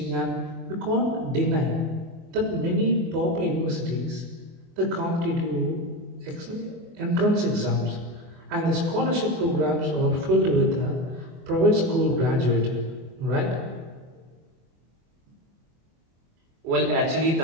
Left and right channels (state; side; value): late; left; 24 ms